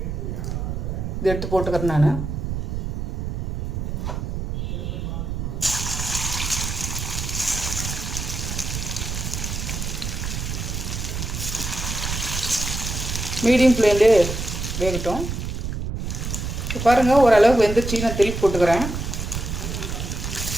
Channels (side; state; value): right; noise; rumble, 3 dB below the sound